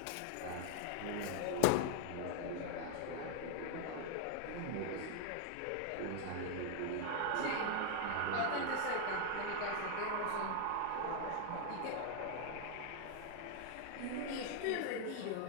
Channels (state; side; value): different; both; correlation 0.00